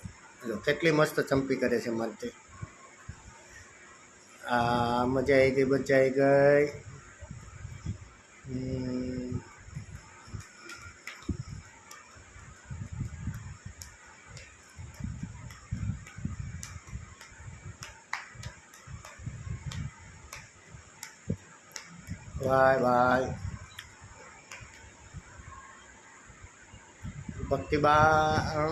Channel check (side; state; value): both; identical; correlation 1.00